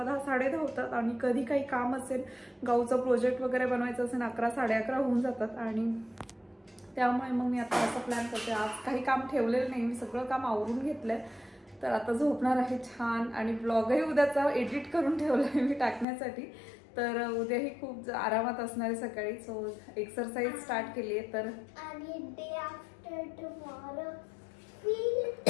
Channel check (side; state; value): right; drops out; at 16.1 s